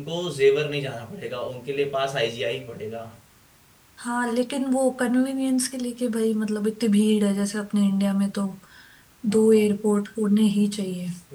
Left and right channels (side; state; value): both; identical; correlation 1.00